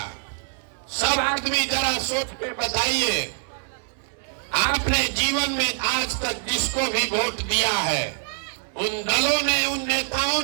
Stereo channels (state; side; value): silent; left; digital silence